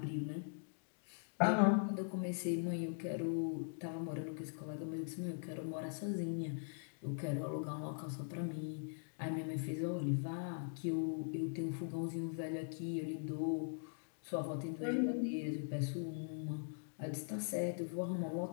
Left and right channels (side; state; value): right; silent; digital silence